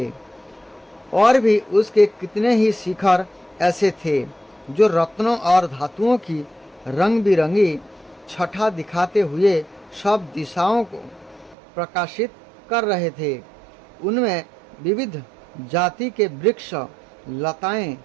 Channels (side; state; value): left; drops out; at 11.6 s